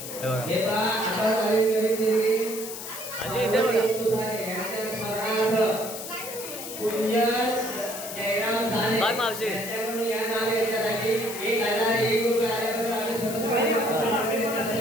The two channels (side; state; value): left; noise; hiss, 9 dB below the sound